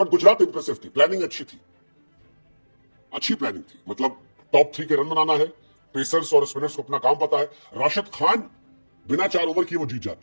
गुजरात इंप्रेसिव थी, प्लानिंग अच्छी थी, अच्छी प्लानिंग थी। मतलब टॉप 3 के रन बनाना है, पेसर्स और स्पिनर्स को अपना काम पता है। राशिद खान बिना 4 ओवर किए वो जीत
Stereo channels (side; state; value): both; inverted; correlation -1.00